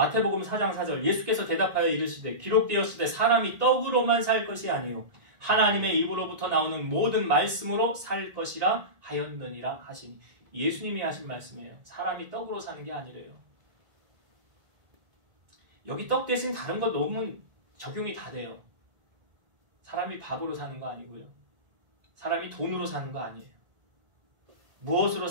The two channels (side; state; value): left; late; 1.7 ms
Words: 4장 4절 예수께서 대답하여 이르시되 기록되었으되 사람이 떡으로만 살 것이 아니요 하나님의 입으로부터 나오는 모든 말씀으로 살 것이라 하였느니라 하시니 예수님이 하신 말씀이에요. 사람이 떡으로 사는 게 아니래요. 여기 떡 대신 다른 거 넣으면 적용이 다 돼요. 사람이 밥으로 사는 거 아니고요. 사람이 돈으로 사는 거 아니에요. 무엇으로